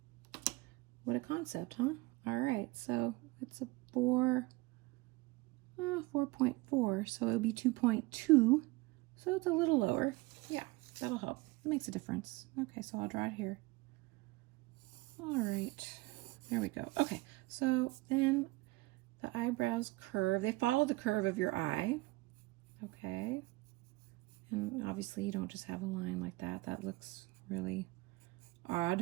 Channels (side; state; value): left; quieter; 21.6 dB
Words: What a concept, huh? All right, so it's a 4.4, so it'll be 2.2, so it's a little lower. Yeah, that'll help. It makes a difference. Okay, so I'll draw it here. All right, there we go. Okay, so then the eyebrows curve. They follow the curve of your eye. Okay, and obviously you don't just have a line like that. That looks really